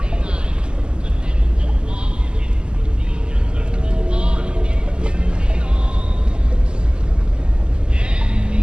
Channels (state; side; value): late; left; 0.049 ms